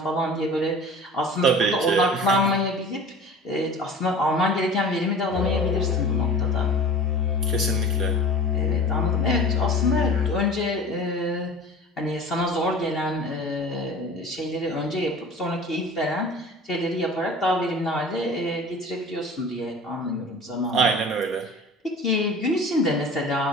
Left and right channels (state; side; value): normal; both; correlation 0.39